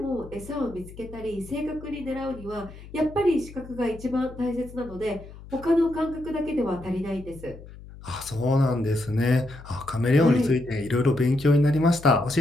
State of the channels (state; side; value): noise; left; hum, 17 dB below the sound